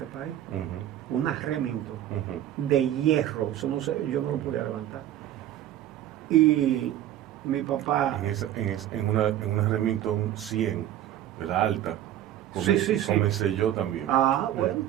país, Ujú. una Remington Ujú. de hierro, eso no sé, yo no lo podía levantar. Y mi papá, En una Remington 100, de la alta. Sí, sí. Comencé yo también. bueno,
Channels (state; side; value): quieter; left; 12.2 dB